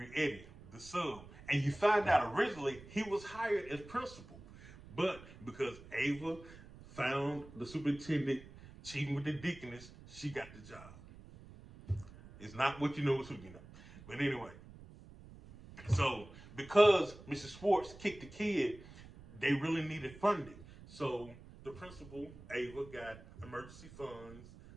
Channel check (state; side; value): noise; right; rumble, 18 dB below the sound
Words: Eddy, the sub. And you find out originally he was hired as principal. But because Ava found the superintendent cheating with the deaconess, she got the job. It's not what you know, it's who you know. But anyway, so because Mrs. Schwartz kicked the kid, they really needed funding. So the principal, Ava, got emergency funds